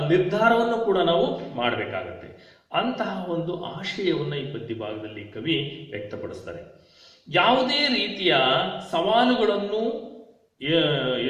ನಿರ್ಧಾರವನ್ನು ಕೂಡ ನಾವು ಮಾಡಬೇಕಾಗತ್ತೆ. ಅಂತಹ ಒಂದು ಆಶಯವನ್ನ ಈ ಪದ್ಯ ಭಾಗದಲ್ಲಿ ಕವಿ ವ್ಯಕ್ತಪಡಿಸ್ತಾರೆ. ಯಾವುದೇ ರೀತಿಯ ಸವಾಲುಗಳನ್ನು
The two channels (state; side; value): identical; both; correlation 1.00